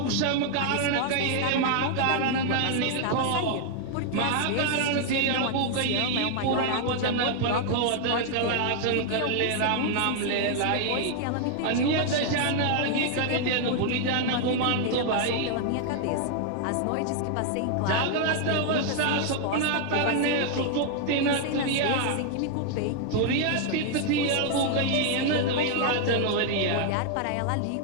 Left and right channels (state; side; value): different; both; correlation 0.00